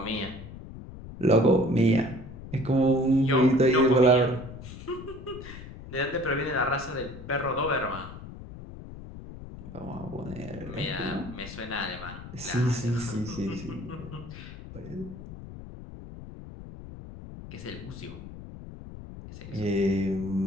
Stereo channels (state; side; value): noise; left; rumble, 13 dB below the sound